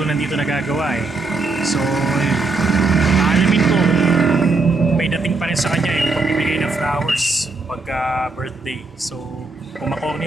nandito nagagawa eh. So, alamin ko may dating pa rin sa kanya yung pagbibigay ng flowers pagka birthday. So, kung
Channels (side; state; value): left; quieter; 3.7 dB